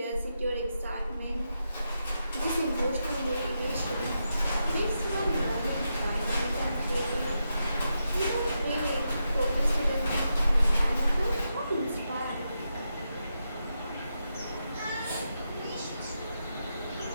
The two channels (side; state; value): both; inverted; correlation -0.86